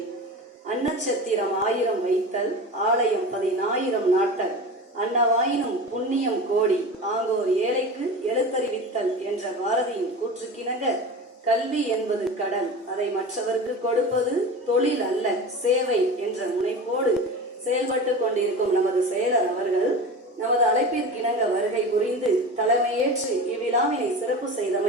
அன்னச்சத்திரம் 1000 வைத்தல், ஆலயம் 10,000 நாட்டல், அன்னவாயினும் புண்ணியம் கோடி, ஆங்கோர் ஏழைக்கு எழுத்தறிவித்தல் என்ற பாரதியின் கூற்றுக்கிணங்க, கல்வி என்பது கடல், அதை மற்றவருக்கு கொடுப்பது தொழில் அல்ல சேவை என்ற முனைப்போடு செயல்பட்டு கொண்டிருக்கும் நமது செயலர் அவர்கள் நமது அழைப்பிற்கிணங்க வருகை புரிந்து தலைமையேற்று இவ்விழாவினை சிறப்பு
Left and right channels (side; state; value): both; normal; correlation 0.31